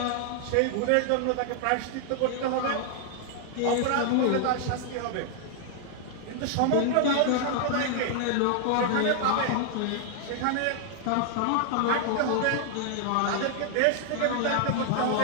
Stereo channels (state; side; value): different; both; correlation 0.00